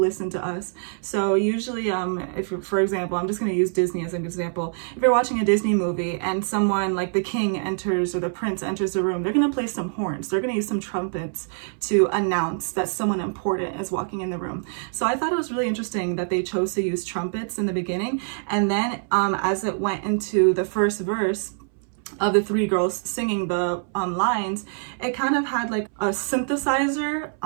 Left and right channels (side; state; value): left; silent; 62 dB below the other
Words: to us. So usually if for example, I'm just going to use Disney as an example. If you're watching a Disney movie and someone like the king enters or the prince enters the room, they're going to play some horns, they're going to use some trumpets to announce that someone important is walking in the room. So I thought it was really interesting that they chose to use trumpets in the beginning, and then as it went into the first verse of the three girls singing the lines, it kind of had like a synthesizer